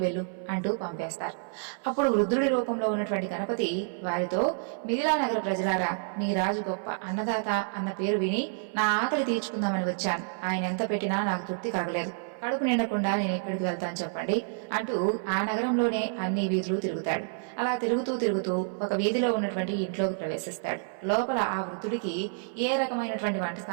వెళ్ళు అంటూ పంపేస్తారు. అప్పుడు వృద్ధుడి రూపంలో ఉన్నటువంటి గణపతి వారితో, మిథిలా నగర ప్రజలారా, మీ రాజు గొప్ప అన్నదాత అన్న పేరు విని నా ఆకలి తీర్చుకుందామని వచ్చాను. ఆయన ఎంత పెట్టినా నాకు తృప్తి కలగలేదు. కడుపు నిండకుండా నేను ఎక్కడికి వెళ్తాను చెప్పండి అంటూ ఆ నగరంలోనే అన్ని వీధులు తిరుగుతాడు. అలా తిరుగుతూ తిరుగుతూ ఒక వీధిలో ఉన్నటువంటి ఇంట్లోకి ప్రవేశిస్తాడు. లోపల ఆ వృద్ధుడికి ఏ రకమైనటువంటి వంట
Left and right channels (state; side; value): silent; left; 58 dB below the other